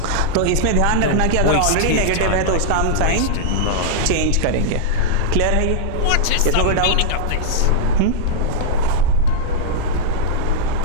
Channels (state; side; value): different; both; correlation -0.02